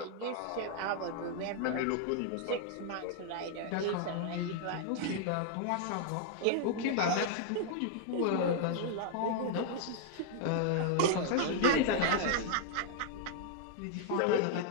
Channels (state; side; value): different; both; correlation 0.00